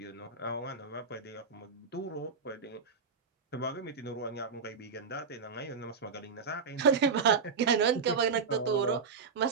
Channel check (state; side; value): quieter; left; 5.4 dB